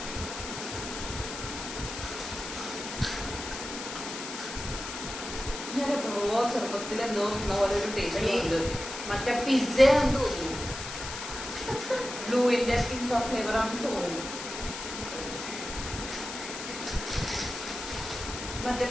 ഞാൻ എപ്പോഴോ ചെറുപ്പത്തിൽ എന്തോ പോലെ ഒരു ടേസ്റ്റ് ഉണ്ട്. മറ്റേ പിസ്സ ആണെന്ന് തോന്നുന്നു. ബ്ലൂവിന്റെ പിസ്സ ഫ്ലേവർ ആണെന്ന് തോന്നുന്നു. മറ്റേ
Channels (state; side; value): noise; left; hiss, 8 dB below the sound